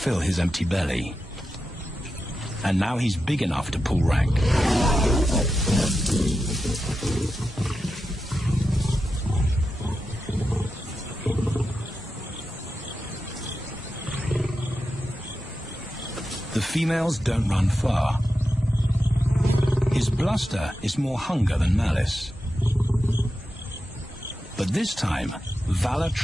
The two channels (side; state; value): both; normal; correlation 0.90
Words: his empty belly. And now he's big enough to pull rank. The females don't run far. His bluster is more hunger than malice. But this time, valor